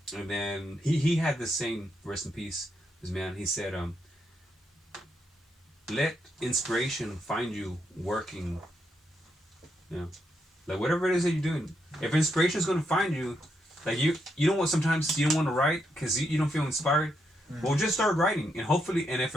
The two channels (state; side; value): normal; both; correlation 0.79